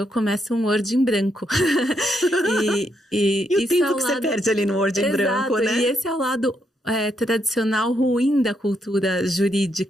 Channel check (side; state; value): both; normal; correlation 0.78